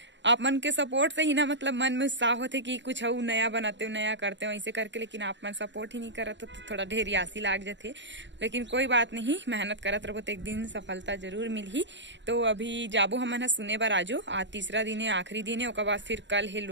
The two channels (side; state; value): left; late; 0.53 ms